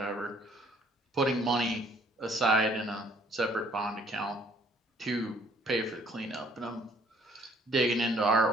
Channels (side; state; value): both; normal; correlation 0.61